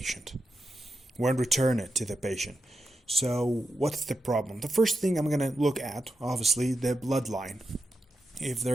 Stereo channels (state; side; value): normal; both; correlation 0.88